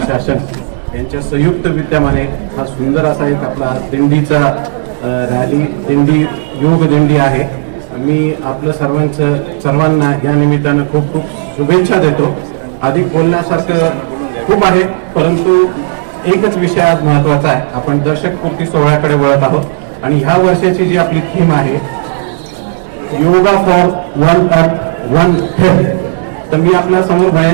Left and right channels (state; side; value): silent; left; digital silence